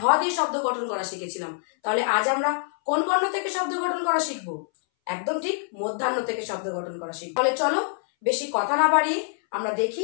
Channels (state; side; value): silent; right; 60 dB below the other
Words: দিয়ে শব্দ গঠন করা শিখেছিলাম, তাহলে আজ আমরা কোন বর্ণ থেকে শব্দ গঠন করা শিখবো? একদম ঠিক, মধ্যাহ্ন থেকে শব্দ গঠন করা শিখবো। তাহলে চলো বেশি কথা না বাড়িয়ে আমরা দেখি